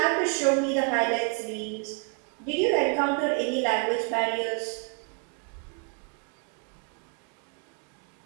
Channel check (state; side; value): quieter; left; 35.8 dB